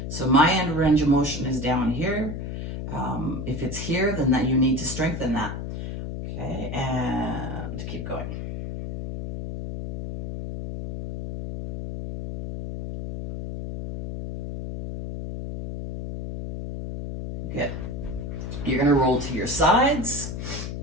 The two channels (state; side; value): noise; left; hum, 6 dB below the sound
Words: So my end range of motion is down here. If it's here, then that you need to strengthen that. Okay, and keep going. Good. You're going to roll to your sides.